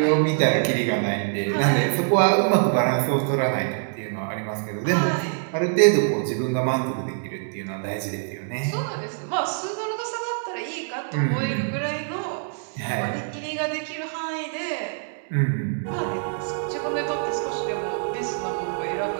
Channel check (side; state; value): left; silent; 62 dB below the other